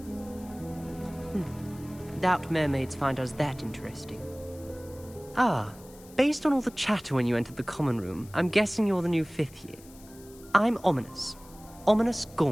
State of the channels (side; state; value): left; noise; hiss, 23 dB below the sound